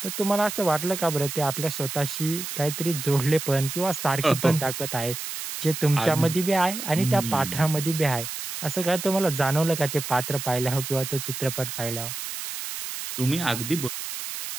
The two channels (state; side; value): noise; right; hiss, 7 dB below the sound